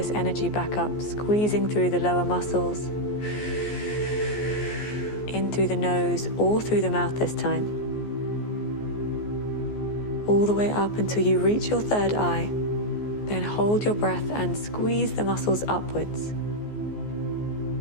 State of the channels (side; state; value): right; late; 14 ms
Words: energy back up, squeezing through the lower muscles, in through the nose or through the mouth this time. All the way up until you reach your third eye. Then hold your breath and squeeze the muscles upwards.